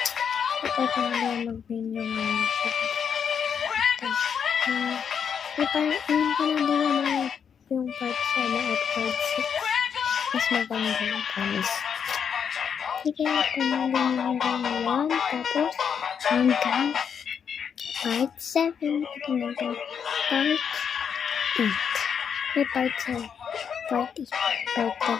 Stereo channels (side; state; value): right; quieter; 7.3 dB